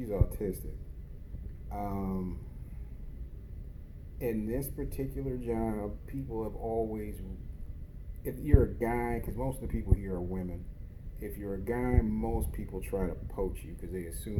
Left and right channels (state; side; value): identical; both; correlation 1.00